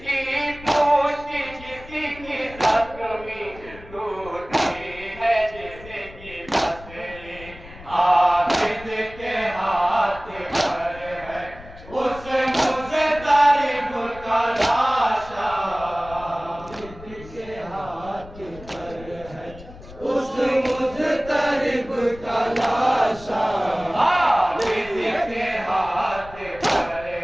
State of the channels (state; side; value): noise; left; rumble, 18 dB below the sound